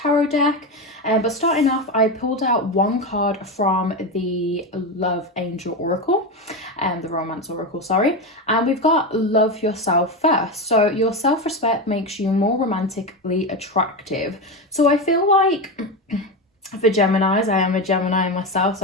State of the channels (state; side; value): normal; both; correlation 0.16